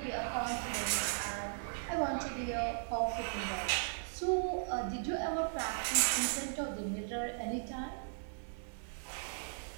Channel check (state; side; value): silent; left; 53 dB below the other